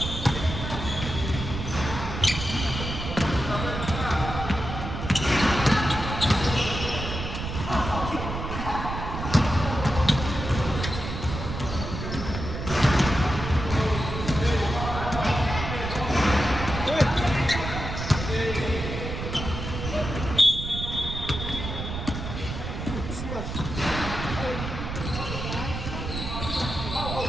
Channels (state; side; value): noise; right; rumble, 6 dB below the sound